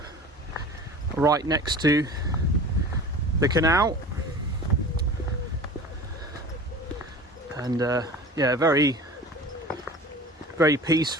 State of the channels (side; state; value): both; normal; correlation 0.39